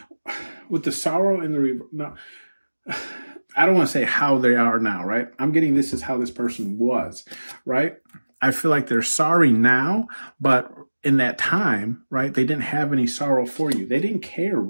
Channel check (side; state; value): both; inverted; correlation -1.00